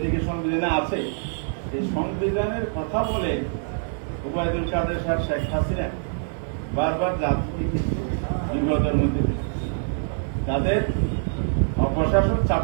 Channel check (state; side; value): silent; left; 62 dB below the other